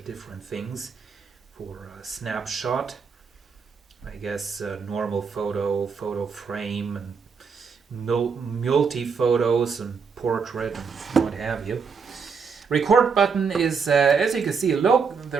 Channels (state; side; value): quieter; left; 5.6 dB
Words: different things for snapshot. I guess normal photo, photo frame, and multi-photos and portrait and what have you. Record button is, as you can see,